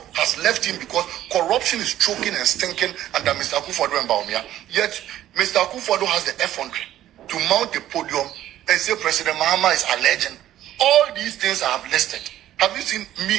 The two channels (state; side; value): quieter; left; 12.8 dB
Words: has left him because corruption is choking and stinking under Mr. Akufo Addo and Baumia. Yet, Mr. Akufo Addo has the effrontery to mount the podium and say President Mahama is alleging. All these things I have listed. Have you seen me